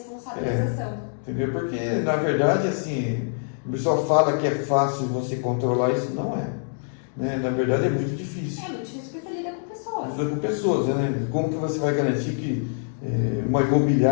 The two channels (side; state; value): right; silent; digital silence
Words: Entendeu? Porque, na verdade, assim, o pessoal fala que é fácil você controlar, isso não é. Né? Na verdade, é muito difícil. É muito difícil porque você lida com pessoas. Lida com pessoas, né? Como que você vai garantir que uma